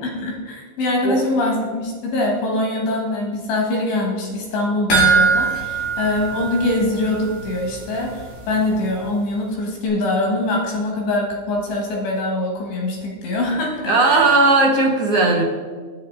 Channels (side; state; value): right; late; 15 ms